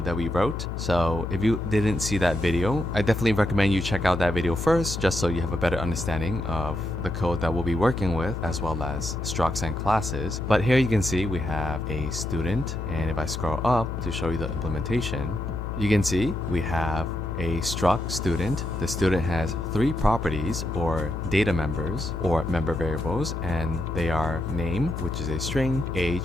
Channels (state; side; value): noise; left; hum, 6 dB below the sound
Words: that we wrote. So if you didn't see that video, I definitely recommend you check out that video first, just so you have a better understanding of the code that we'll be working with, as well as structs and classes. But here you can see we have a student, and if I scroll up to show you the implementation, you can see we have a struct student. The student has three properties or data members or member variables, and they are name, which is a string,